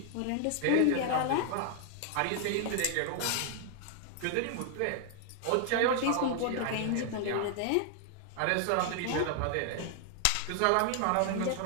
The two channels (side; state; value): both; different; correlation 0.00